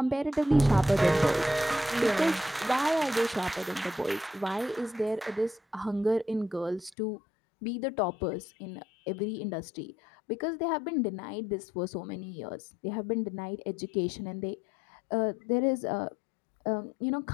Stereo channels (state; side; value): drops out; right; at 6.9 s